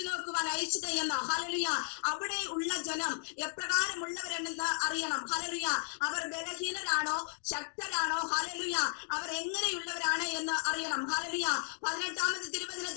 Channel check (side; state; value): right; silent; digital silence